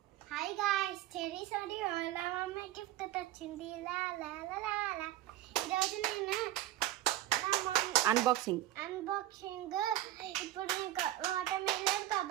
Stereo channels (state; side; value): quieter; left; 14.0 dB